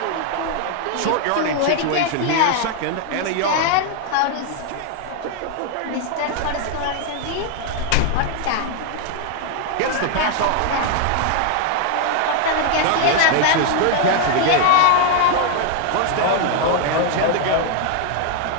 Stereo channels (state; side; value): different; both; correlation 0.00